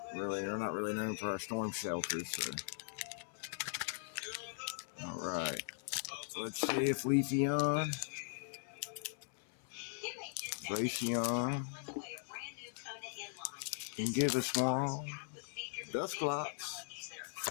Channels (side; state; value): right; silent; 51 dB below the other